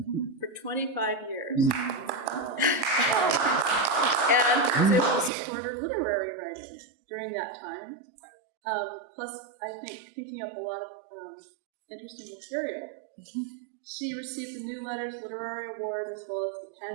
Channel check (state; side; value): drops out; left; at 5.3 s